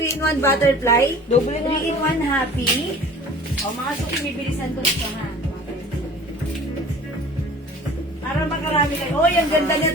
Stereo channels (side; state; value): both; normal; correlation 0.45